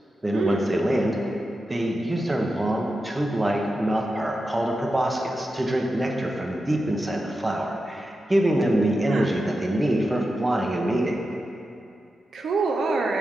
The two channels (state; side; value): normal; both; correlation 0.90